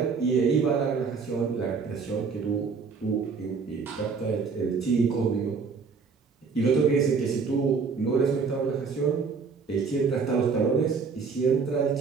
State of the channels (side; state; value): left; quieter; 5.3 dB